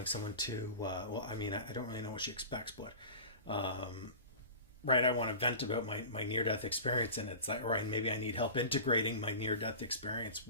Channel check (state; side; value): inverted; both; correlation -0.35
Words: well, I mean, I don't really know what she expects, but right, I want to vent about my near-death experience, and it's like, right, maybe I need help integrating my near-death experience